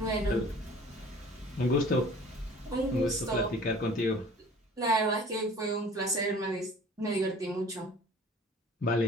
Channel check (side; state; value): both; normal; correlation 0.47